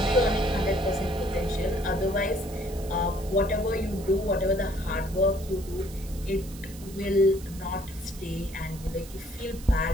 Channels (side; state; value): right; noise; hiss, 18 dB below the sound